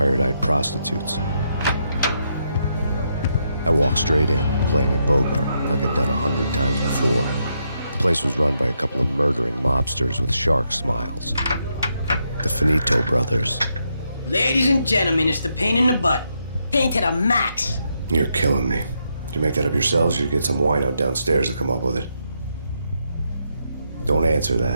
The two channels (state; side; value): inverted; both; correlation -0.80